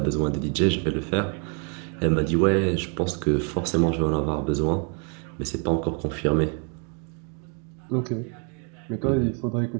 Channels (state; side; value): quieter; left; 39.3 dB